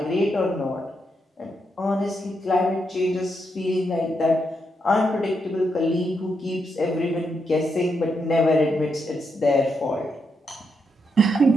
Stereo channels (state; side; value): normal; both; correlation 0.81